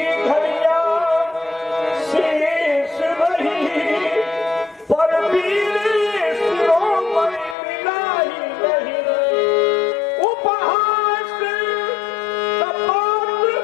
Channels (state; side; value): drops out; right; at 7.6 s